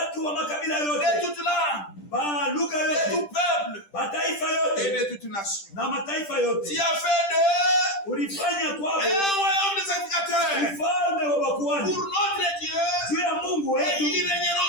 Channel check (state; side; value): late; right; 10 ms